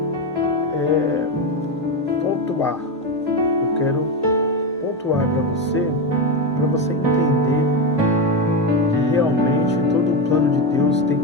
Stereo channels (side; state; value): both; normal; correlation 0.12